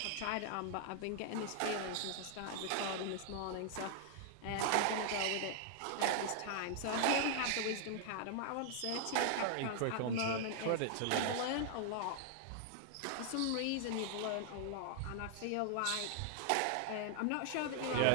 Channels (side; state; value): both; different; correlation 0.00